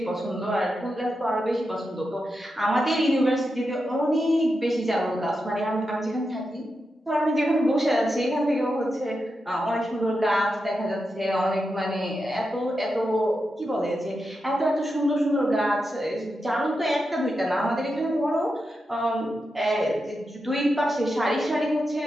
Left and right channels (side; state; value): both; normal; correlation 0.88